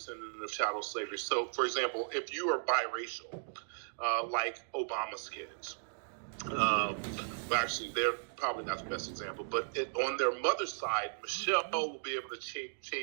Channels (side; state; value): left; silent; digital silence